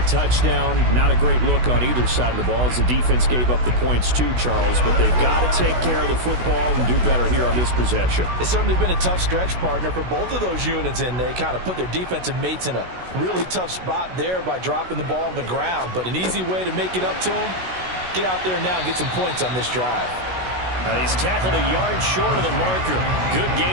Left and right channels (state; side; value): late; left; 16 ms